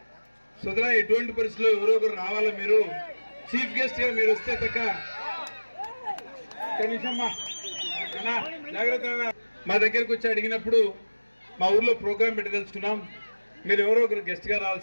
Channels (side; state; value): both; inverted; correlation -1.00